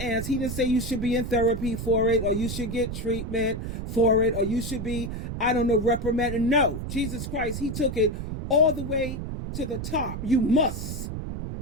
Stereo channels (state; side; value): noise; right; rumble, 6 dB below the sound